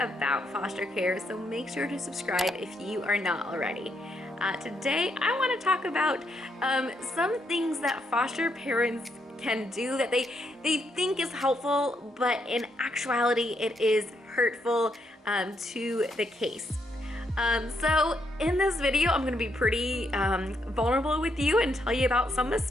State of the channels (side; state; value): both; normal; correlation 0.77